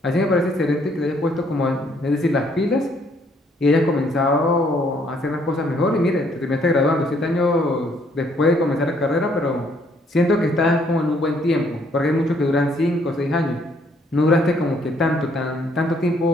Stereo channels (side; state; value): both; normal; correlation 0.66